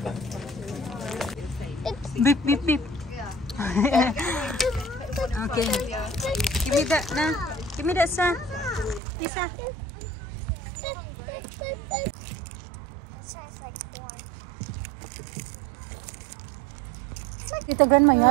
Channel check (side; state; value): left; drops out; at 9.0 s